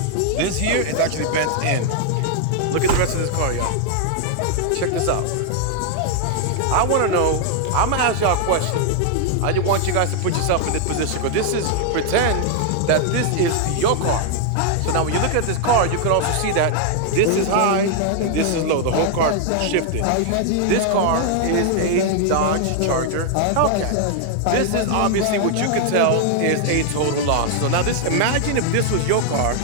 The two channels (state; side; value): different; both; correlation 0.00